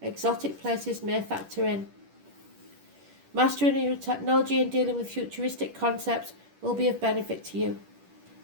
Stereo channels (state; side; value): late; left; 10 ms